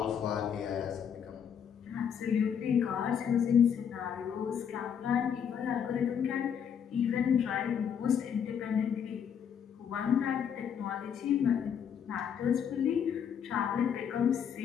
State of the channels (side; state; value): right; quieter; 8.0 dB